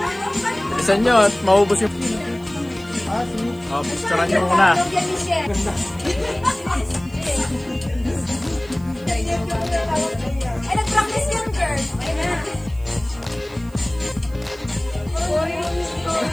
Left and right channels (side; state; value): right; noise; hiss, 26 dB below the sound